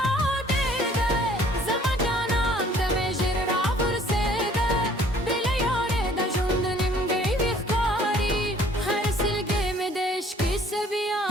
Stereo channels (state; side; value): normal; both; correlation 0.57